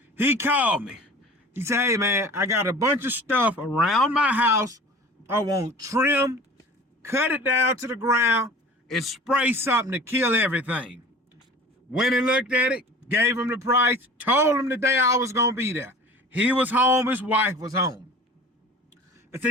He called me. He said, hey, man, I got a bunch of stuff around my house. I want trim, cut it down to the ground, and spray something to kill everything. Went and looked at it, gave him the price, told him the day I was going to be there. He was home, his wife was home. I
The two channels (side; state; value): both; normal; correlation 0.42